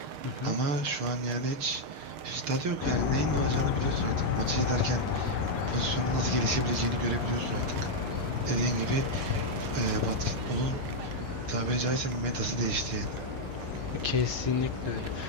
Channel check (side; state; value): left; late; 6.6 ms